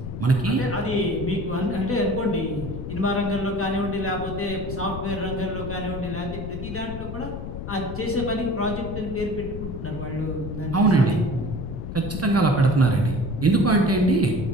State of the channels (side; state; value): left; noise; rumble, 7 dB below the sound